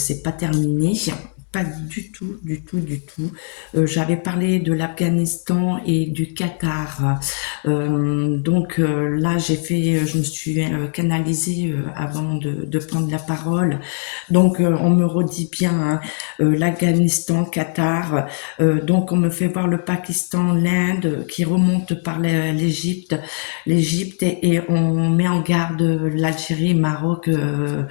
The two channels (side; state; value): right; silent; 56 dB below the other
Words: pas terminé. Pas du tout, du tout, du tout. J'avais parlé de l'Afghanistan et du Qatar. Là, je me suis canalisée avant de prendre la parole. On me redit bien, hein, l'Afghanistan, Qatar. On me fait voir le Pakistan, l'Inde qui remonte par l'Égypte et on met en garde l'Algérie, Maroc.